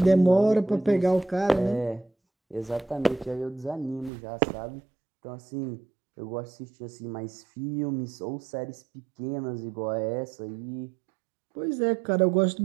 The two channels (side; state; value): left; drops out; at 4.1 s